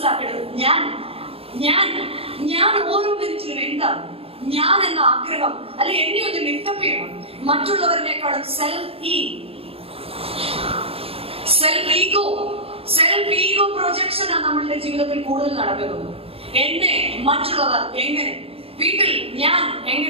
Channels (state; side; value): late; left; 0.28 ms